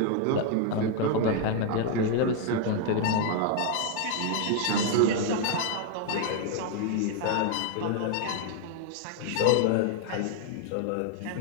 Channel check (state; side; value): different; both; correlation 0.00